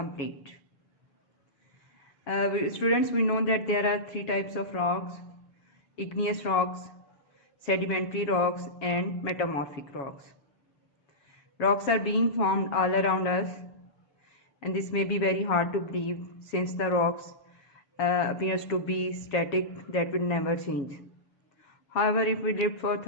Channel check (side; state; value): right; late; 7.2 ms